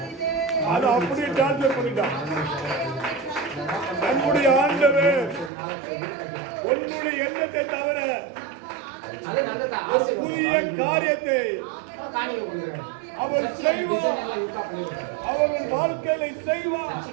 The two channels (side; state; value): left; drops out; at 5.5 s